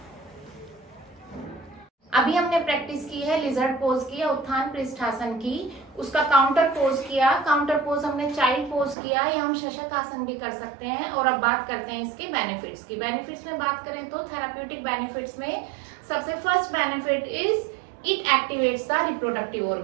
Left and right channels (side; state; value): left; drops out; at 9.0 s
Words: अभी हमने practice की है lizard pose की या उत्थान पृष्ठासन की, उसका काउंटर पोज किया। काउंटर पोज हमने चाइल्ड पोज किया, या हम शशक आसन भी कर सकते हैं। और अब बात करते हैं इसके बेनिफिट्स की। बेनिफिट्स में बात करें तो थेराप्यूटिक बेनिफिट्स में सबसे first benefit is it activates the reproductive